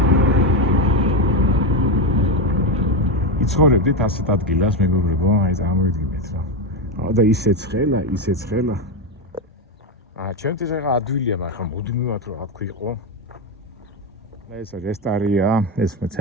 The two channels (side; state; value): both; normal; correlation 0.12